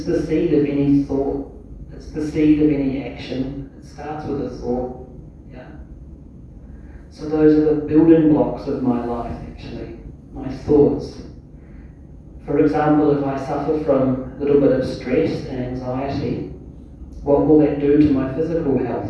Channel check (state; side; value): identical; both; correlation 1.00